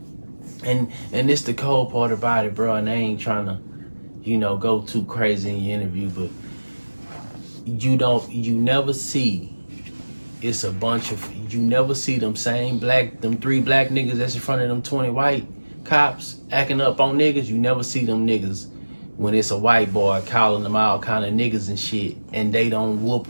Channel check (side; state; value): both; inverted; correlation -1.00